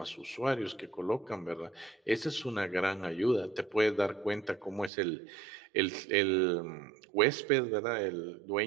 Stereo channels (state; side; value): drops out; left; at 4.9 s